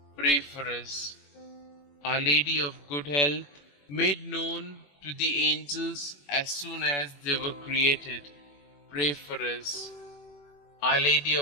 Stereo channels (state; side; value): late; right; 21 ms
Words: pray for us. Our Lady of Good Health, made known to the angels as soon as they were created, pray for us. Our Lady